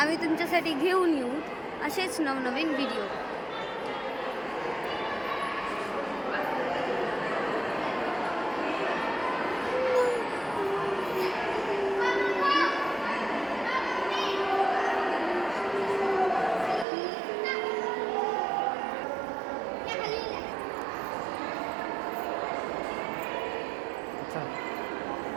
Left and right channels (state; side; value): drops out; left; at 16.9 s